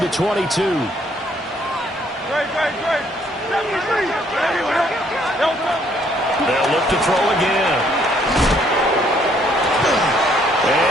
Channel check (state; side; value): normal; both; correlation 0.66